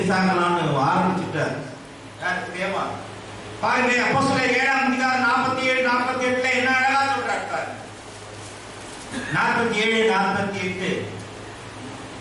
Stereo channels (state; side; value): identical; both; correlation 1.00